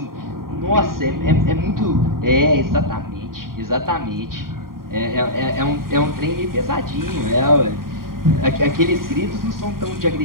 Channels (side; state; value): left; late; 0.91 ms